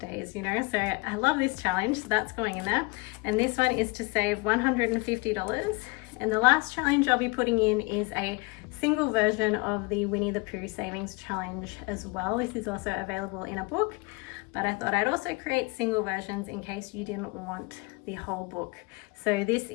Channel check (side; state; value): right; quieter; 27.3 dB